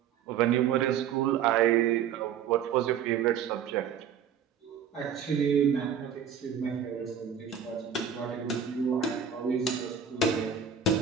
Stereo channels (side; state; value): left; quieter; 7.7 dB